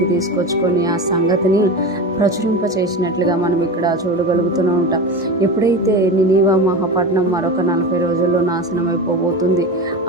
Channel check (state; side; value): normal; both; correlation 0.25